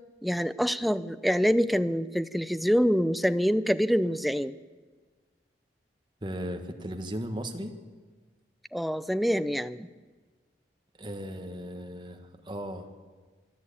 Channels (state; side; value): normal; both; correlation 0.97